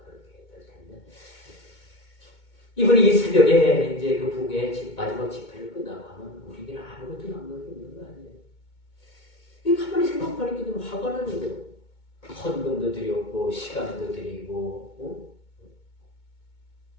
그렇게 될 텐데 이분이 이 새벽에 이제 그 부흥회 마지막 집회를 끝나고 하면 우리에게는 아무것도 남는 게 없는 거 아니에요. 이 가만히 생각하니까 좀 화가 나는 거예요. 헌금도 드렸고 시간도 드리고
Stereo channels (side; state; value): right; late; 2.2 ms